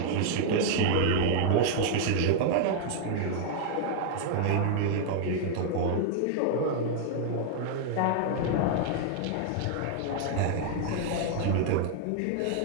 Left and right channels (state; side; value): different; both; correlation 0.00